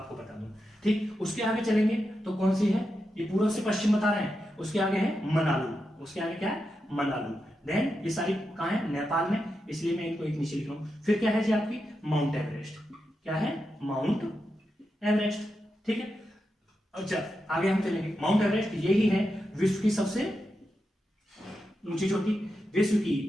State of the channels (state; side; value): normal; both; correlation 0.87